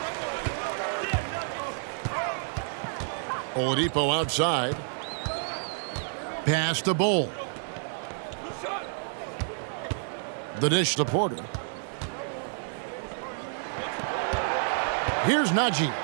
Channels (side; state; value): left; silent; digital silence